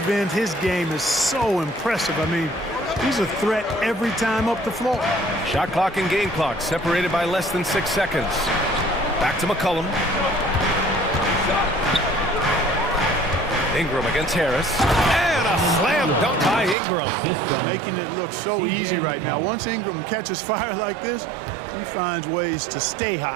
end, his game is so impressive. I mean, he's a threat every time up the floor. Shot clock and game clock separated by less than 6 seconds. Back to McCollum. Ingram against Harris. And a slam dunk by Ingram. Making it look so easy right now. Once Ingram catches fire like this, he finds ways to stay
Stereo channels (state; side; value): drops out; left; at 16.8 s